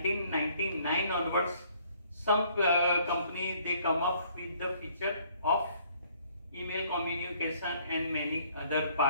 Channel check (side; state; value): both; inverted; correlation -0.62